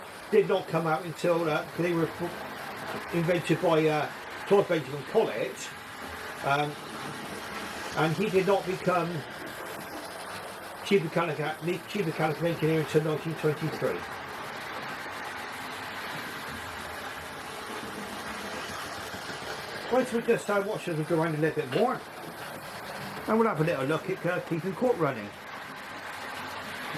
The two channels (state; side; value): identical; both; correlation 1.00